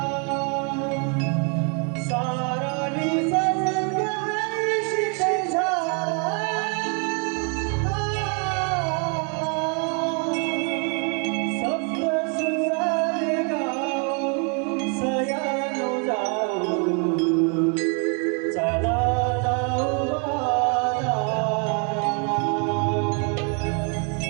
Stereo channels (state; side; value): quieter; left; 37.8 dB